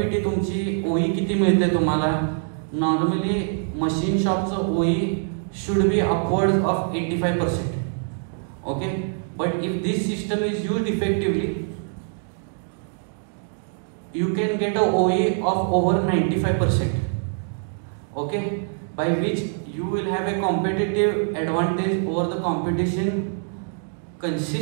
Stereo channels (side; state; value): left; silent; 63 dB below the other